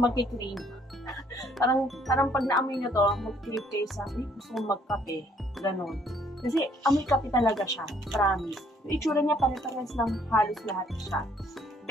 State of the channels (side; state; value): both; normal; correlation 0.64